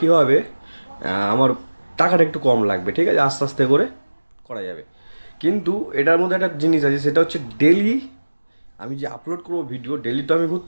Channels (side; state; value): both; inverted; correlation -1.00